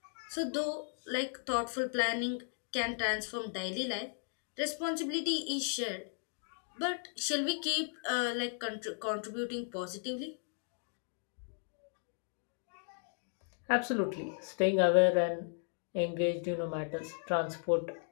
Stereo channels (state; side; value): silent; right; 54 dB below the other